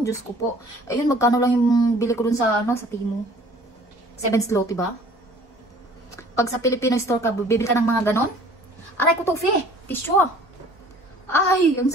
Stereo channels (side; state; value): both; normal; correlation 0.52